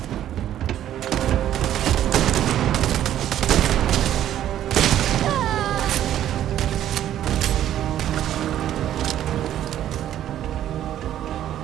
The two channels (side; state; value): left; quieter; 11.6 dB